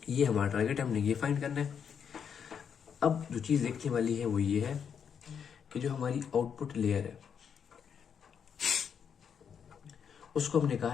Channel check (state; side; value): quieter; right; 7.4 dB